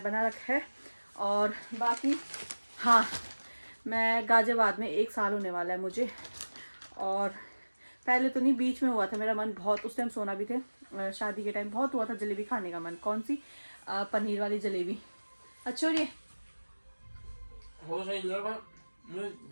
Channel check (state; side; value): inverted; both; correlation -1.00